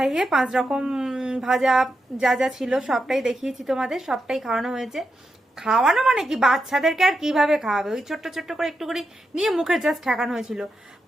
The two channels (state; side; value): normal; both; correlation 0.86